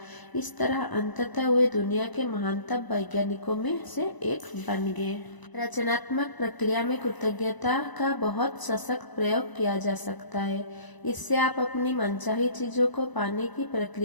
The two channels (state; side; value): late; right; 1.0 ms